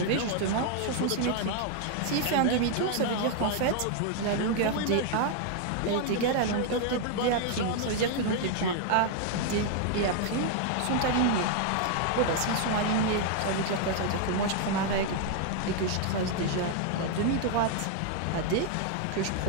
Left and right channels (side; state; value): both; different; correlation 0.00